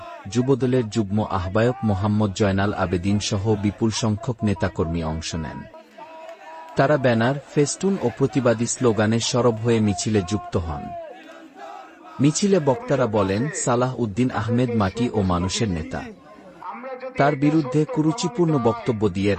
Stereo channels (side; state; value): both; identical; correlation 1.00